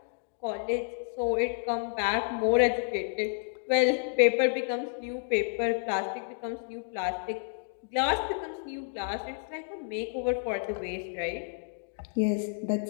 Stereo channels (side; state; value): right; silent; digital silence